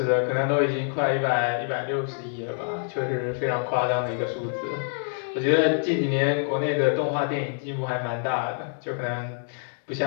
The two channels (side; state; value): right; silent; 56 dB below the other